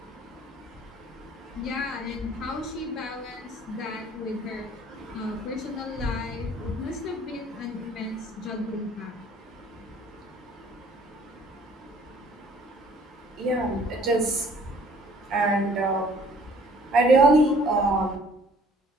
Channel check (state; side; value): normal; both; correlation 0.56